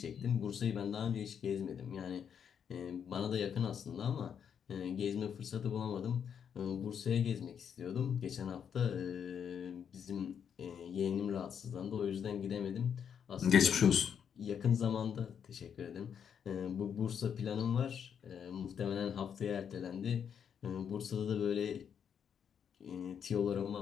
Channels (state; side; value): quieter; right; 7.8 dB